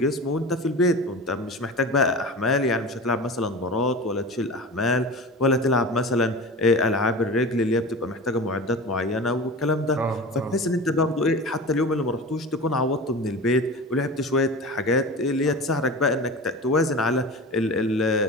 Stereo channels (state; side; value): normal; both; correlation 0.32